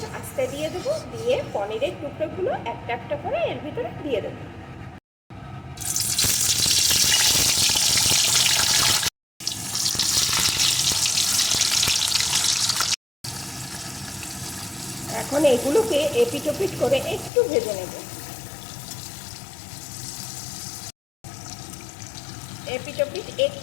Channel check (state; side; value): drops out; right; at 17.3 s